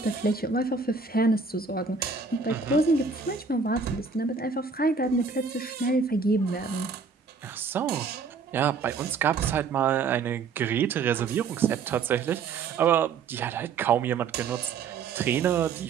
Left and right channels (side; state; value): left; quieter; 5.1 dB